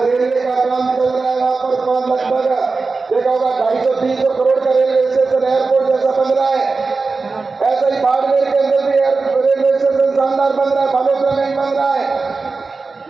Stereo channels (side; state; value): left; quieter; 4.1 dB